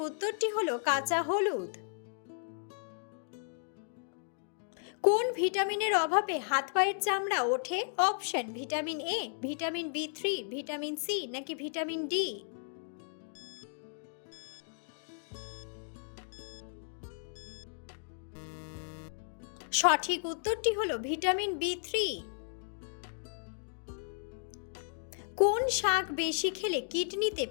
উত্তরটি হলো কাঁচা হলুদ। কোন ভিটামিনের অভাবে হাত পায়ের চামড়া ওঠে? অপশন ভিটামিন এ, ভিটামিন বি3, ভিটামিন সি নাকি ভিটামিন ডি। সঠিক উত্তরটি হলো ভিটামিন বি3। কোন শাক বেশি খেলে কিডনিতে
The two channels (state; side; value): silent; right; digital silence